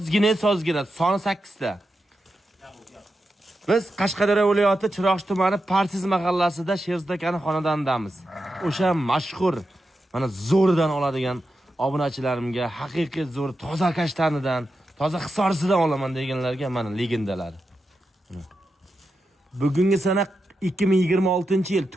sozgina, soni 8 ta. Biz Qashqadaryo viloyati Chiroqchi tumani Parsiz mahallasida Sherzakani xonadonidamiz. O'sha mashhur mana zo'ridan oladigan obunachilarimga haqiqiy zo'r toza kashtanidan, toza Hisorisidan olaman deganlarga mana legendalar. Bugungi sana 2026-yil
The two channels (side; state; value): both; normal; correlation 0.89